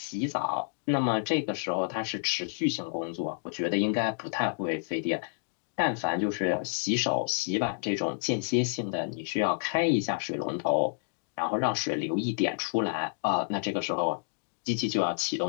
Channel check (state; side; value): silent; right; digital silence